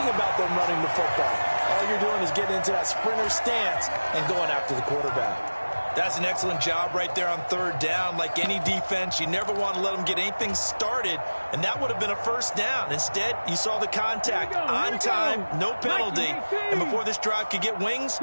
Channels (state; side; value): inverted; both; correlation -1.00